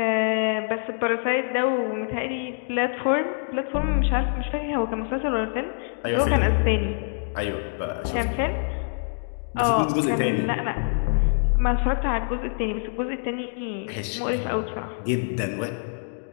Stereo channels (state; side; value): silent; right; digital silence